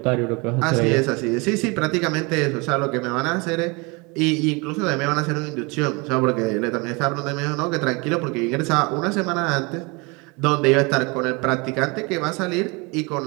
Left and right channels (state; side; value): quieter; left; 28.0 dB